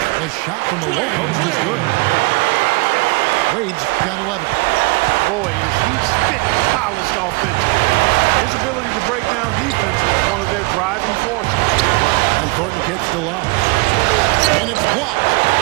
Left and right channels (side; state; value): left; quieter; 26.4 dB